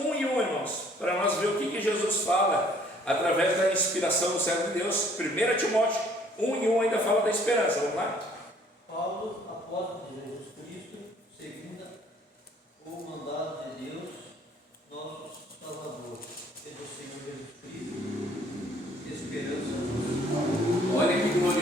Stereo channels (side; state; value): both; normal; correlation 0.59